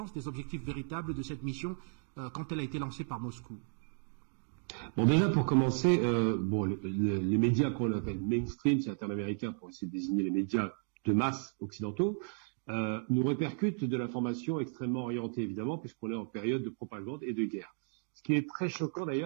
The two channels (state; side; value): silent; left; 55 dB below the other